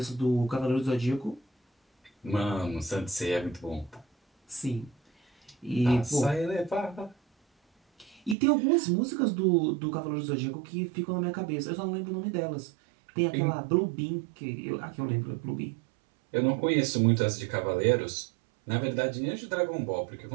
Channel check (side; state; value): left; drops out; at 8.3 s